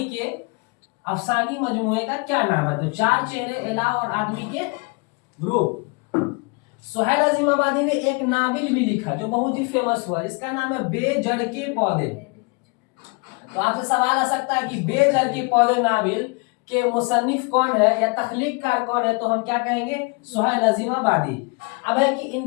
के अफसानी मजमूए का क्या नाम है? तो चार चेहरे, अलाव और आदमी के रूप। सुहैल अजीमाबादी ने एक नावल भी लिखा जो बहुत ही फेमस हुआ, इसका नाम है बेजड़ के पौधे। तो आपसे सवाल आ सकता है कि बेजड़ के पौधे नावल के मुसन्निफ कौन है या तख्लीककार कौन है? तो हम क्या कहेंगे? सुहैल अजीमाबादी। अब है कि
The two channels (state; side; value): quieter; right; 30.8 dB